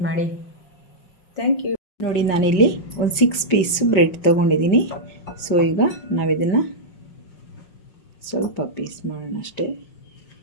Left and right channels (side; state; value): right; late; 5.5 ms